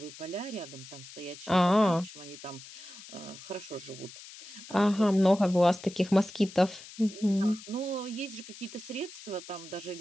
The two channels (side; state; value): left; noise; hiss, 16 dB below the sound